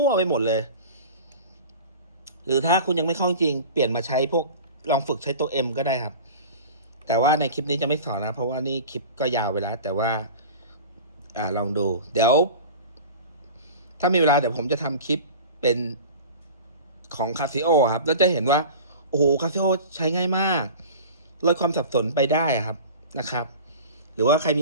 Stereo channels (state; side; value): inverted; both; correlation -0.37